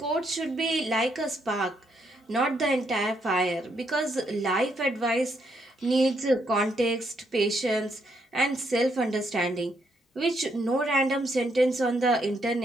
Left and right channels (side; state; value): both; normal; correlation 0.75